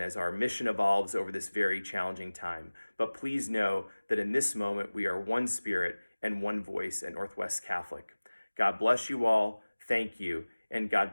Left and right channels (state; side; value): inverted; both; correlation -1.00